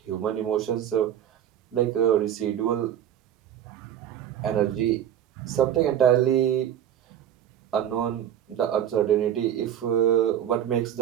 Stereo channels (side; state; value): left; quieter; 10.3 dB